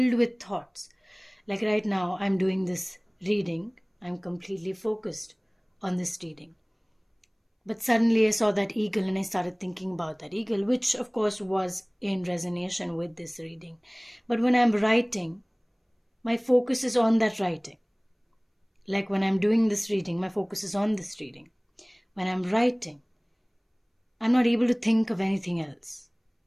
with thoughts. Like right now, I'm doing this reading. I'm completely focused on this reading. But suddenly I saw that eagle and I started thinking about that eagle, which of course was in resonance with this reading. But when I'm writing, my focus is on that writing. Like when I'm doing this reading, my focus is on this reading. When I'm writing, I'm not able to think of anything else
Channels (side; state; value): both; identical; correlation 1.00